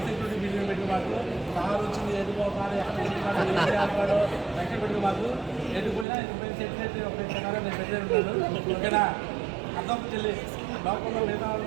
బిల్డింగ్ పెట్టుకున్న వాళ్ళు, కారు వచ్చింది ఎదుకోవాలి ఎక్కడ ఎక్కడ పెట్టుకున్న వాళ్ళు ఎదుకుపోయినా ఎదుకుపోయిన సెక్రటరీ ఒక ప్రకారం నేను పెట్టే ఉంటాను. ఓకేనా. అర్థం చెల్లి లోపల మిగతా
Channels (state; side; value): drops out; left; at 6.1 s